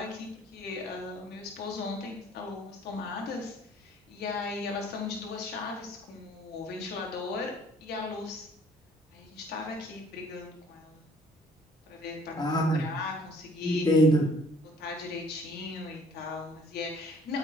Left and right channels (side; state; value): both; normal; correlation 0.57